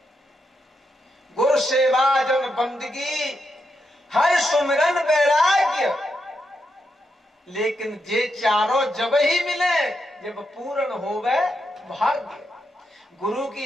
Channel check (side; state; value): both; normal; correlation 0.83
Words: गुरु सेवा जन बंदगी हर सुमिरन वैराग्य, लेकिन ये चारों जब ही मिले जब पूर्ण होवे भाग्य। गुरु